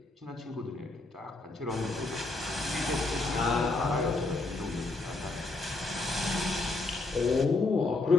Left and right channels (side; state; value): right; quieter; 3.1 dB